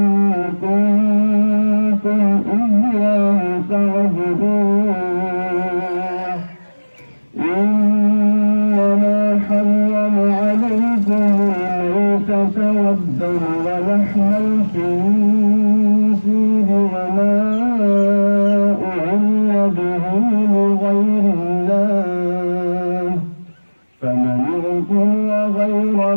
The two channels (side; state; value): both; inverted; correlation -1.00